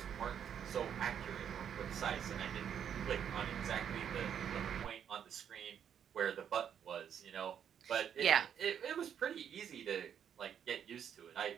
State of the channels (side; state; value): left; quieter; 8.6 dB